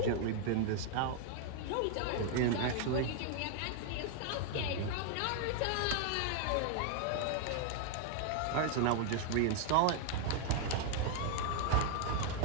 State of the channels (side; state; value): both; different; correlation 0.00